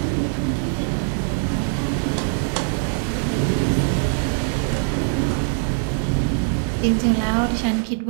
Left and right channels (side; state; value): left; silent; 55 dB below the other